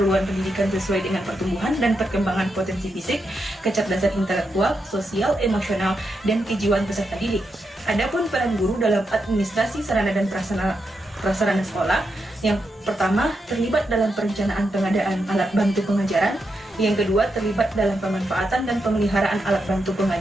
pendidikan sesuai dengan pertumbuhan dan perkembangan potensi fisik, kecerdasan intelektual, sosial, emosional, dan kejiwaan peserta didik. Adapun peran guru dalam administrasi sarana dan prasarana sekolah, yang pertama terlibat dalam perencanaan pengadaan alat bantu pengajaran, yang kedua terlibat dalam pemanfaatan dan pemeliharaan alat bantu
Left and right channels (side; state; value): both; normal; correlation 0.84